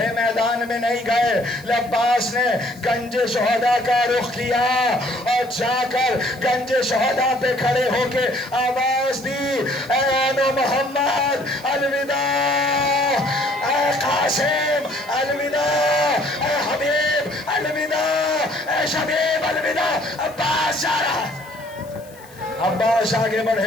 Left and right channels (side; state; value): left; noise; hiss, 24 dB below the sound